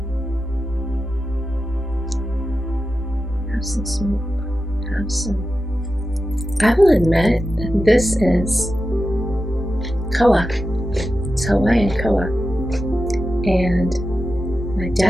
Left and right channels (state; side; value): normal; both; correlation 0.91